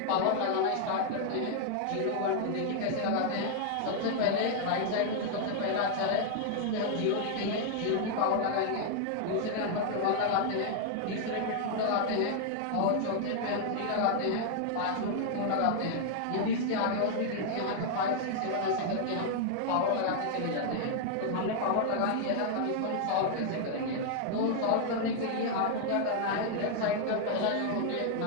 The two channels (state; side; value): different; both; correlation 0.00